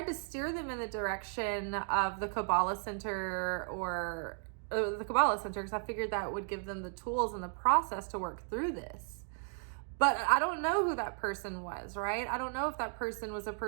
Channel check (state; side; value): silent; left; 54 dB below the other